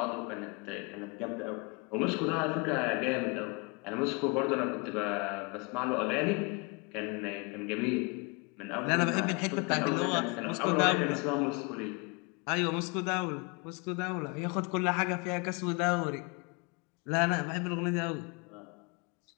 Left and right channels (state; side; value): quieter; right; 30.6 dB